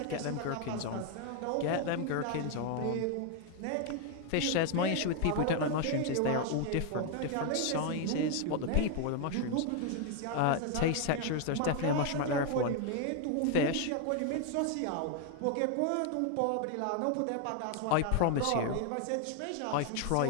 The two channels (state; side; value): different; both; correlation 0.01